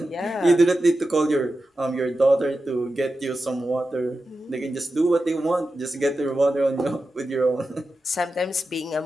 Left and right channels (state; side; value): normal; both; correlation 0.91